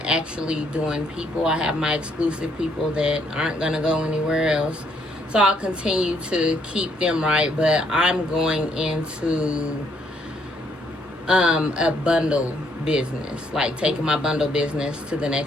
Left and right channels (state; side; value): normal; both; correlation 0.70